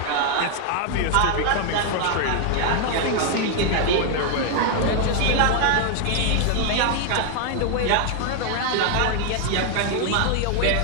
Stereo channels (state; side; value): different; both; correlation 0.00